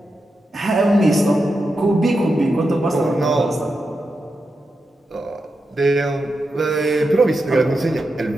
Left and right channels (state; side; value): normal; both; correlation 0.88